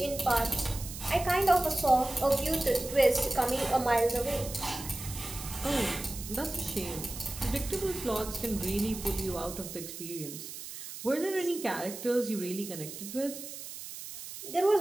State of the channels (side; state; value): right; noise; hiss, 10 dB below the sound